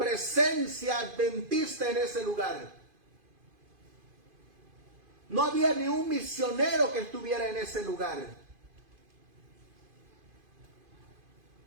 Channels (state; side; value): late; left; 2.5 ms